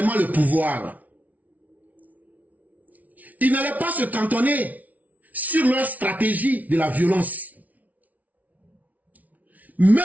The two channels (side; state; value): left; late; 0.073 ms